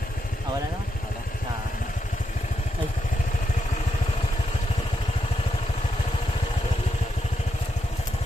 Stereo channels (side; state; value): both; normal; correlation 0.83